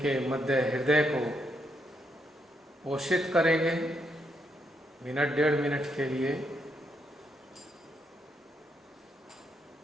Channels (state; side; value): normal; both; correlation 0.77